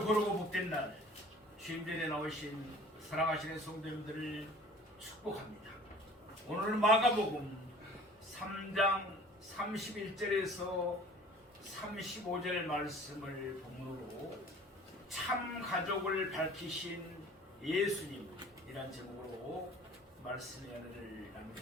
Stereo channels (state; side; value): normal; both; correlation 0.48